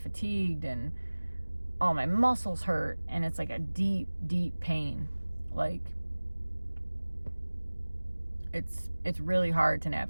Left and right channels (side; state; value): both; inverted; correlation -1.00